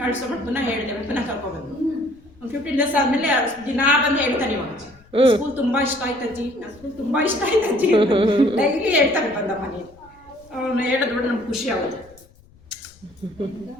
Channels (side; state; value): left; noise; rumble, 27 dB below the sound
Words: ಪುನಃ ಹೇಳಿದೆ, ಪುನಃ ಕರ್ಕೊಬಂದು ಒಂದು 15 days ಆದಮೇಲೆ ದಿನ ಬಂದು ಹೇಳ್ತಾನೆ. ಇವಾಗ ಸ್ಕೂಲ್ ತುಂಬ ಇಷ್ಟ ಆಯ್ತಜ್ಜಿ, ನನ್ನ ಸ್ಕೂಲ್ ತುಂಬ ಇಷ್ಟ ಆಯ್ತಜ್ಜಿ ಡೈಲಿ ಹೇಳ್ತಾನೆ ಬಂದ ಮನೆ. ಅವನು ಹೇಳಿದ್ಬಿಟ್ಟು ನಮ್ಗೆ ಖುಷಿ ಆಗುತ್ತೆ.